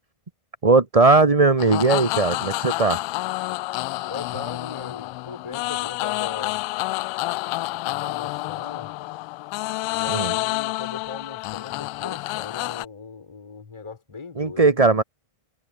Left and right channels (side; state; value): left; late; 1.3 ms